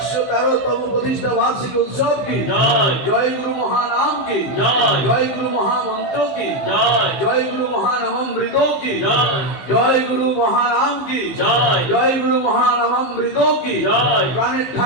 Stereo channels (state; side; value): late; right; 15 ms